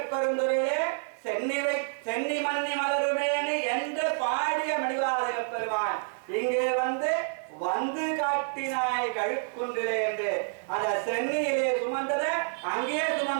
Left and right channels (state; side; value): silent; left; 59 dB below the other